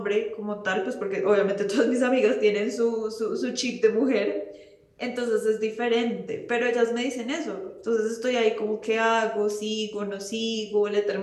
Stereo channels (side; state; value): both; identical; correlation 1.00